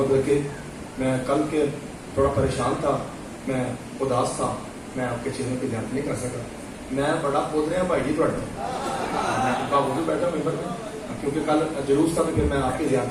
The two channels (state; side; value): identical; both; correlation 1.00